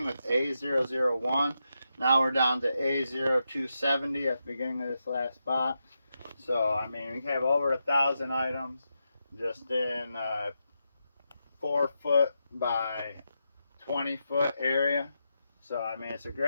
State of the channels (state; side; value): inverted; both; correlation -0.86